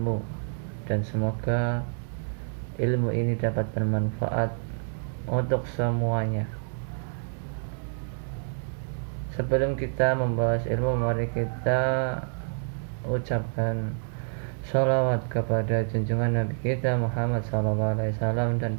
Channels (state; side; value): silent; left; digital silence